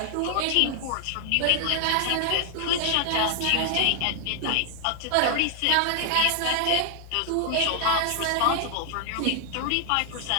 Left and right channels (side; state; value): both; different; correlation 0.00